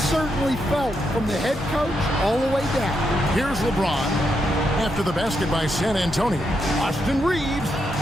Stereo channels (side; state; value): both; normal; correlation 0.81